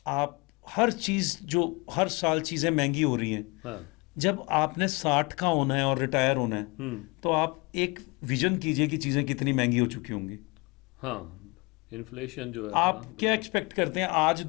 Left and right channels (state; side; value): quieter; right; 27.1 dB